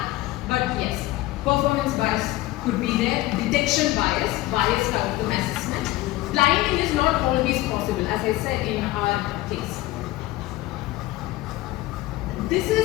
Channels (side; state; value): right; quieter; 17.5 dB